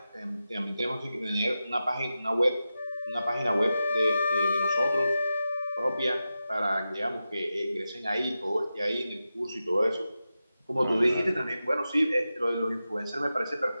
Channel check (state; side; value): inverted; both; correlation -0.92